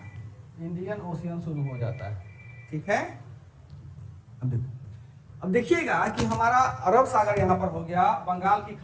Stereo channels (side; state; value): both; identical; correlation 1.00